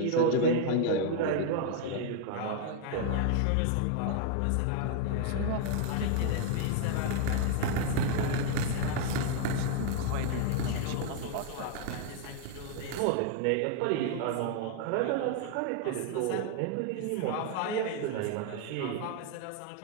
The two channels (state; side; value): different; both; correlation 0.01